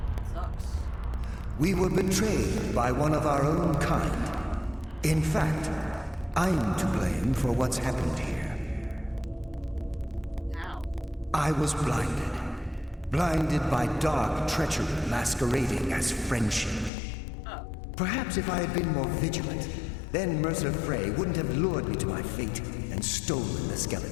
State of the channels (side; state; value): right; drops out; at 16.9 s